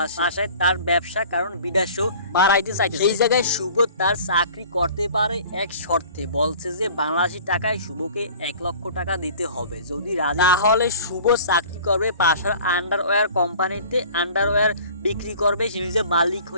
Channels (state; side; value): inverted; both; correlation -0.46